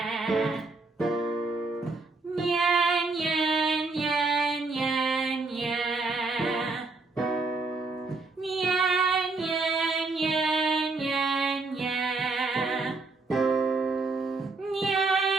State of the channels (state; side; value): quieter; left; 3.7 dB